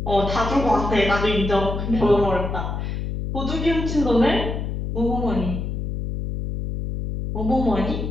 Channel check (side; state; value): left; noise; hum, 4 dB below the sound